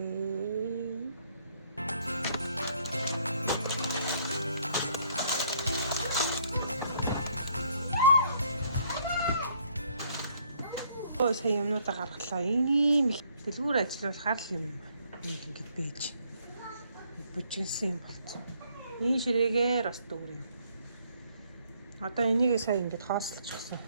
Сая юмнуудаа гаргалаа. Ийм их дэлгүүр ажиллуулахаар л юм ингэж байж бүжигсэн юм болцсон. Энэ ширээгээр бас дүүр юм. Одоо энийг сая ингэж хоослчихсан.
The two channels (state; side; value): inverted; both; correlation -0.66